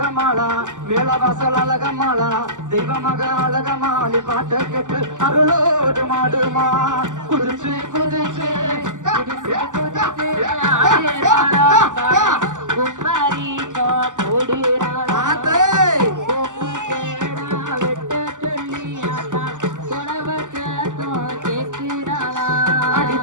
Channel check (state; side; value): late; left; 0.87 ms